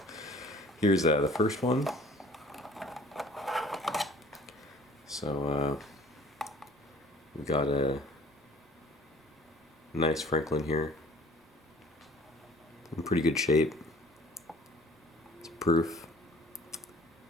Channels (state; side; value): normal; both; correlation 0.50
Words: here's the first one. So we got a nice Franklin here, in pretty good shape. It's proof,